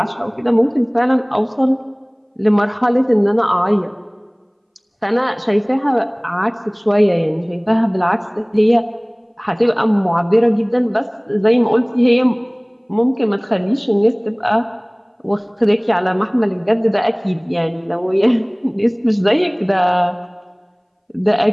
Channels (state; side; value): identical; both; correlation 1.00